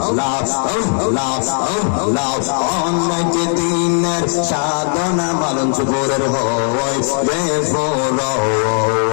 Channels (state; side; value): silent; right; 59 dB below the other